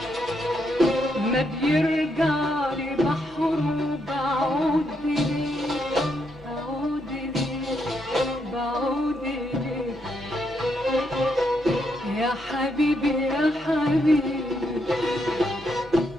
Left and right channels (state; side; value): normal; both; correlation 0.78